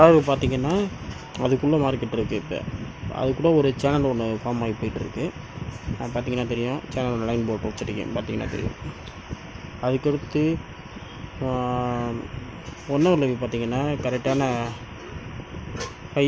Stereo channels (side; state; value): both; identical; correlation 1.00